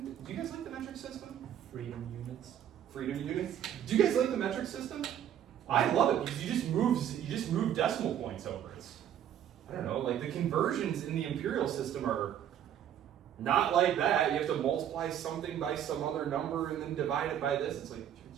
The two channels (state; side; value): quieter; left; 10.1 dB